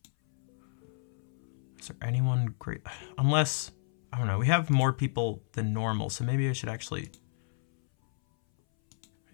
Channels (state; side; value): silent; right; 57 dB below the other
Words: Is there anyone great? Unless, I don't know, we have more people than normal, so maybe I should actually